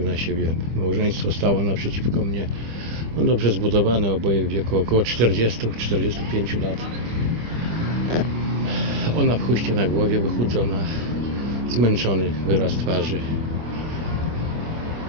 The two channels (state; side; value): late; left; 25 ms